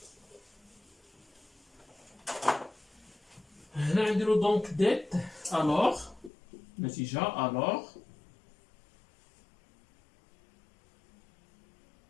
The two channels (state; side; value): drops out; right; at 6.3 s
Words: هنا نديرو دونك ديت. الوغ النتيجة الوغ